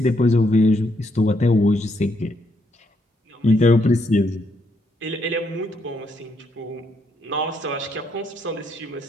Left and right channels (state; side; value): normal; both; correlation 0.75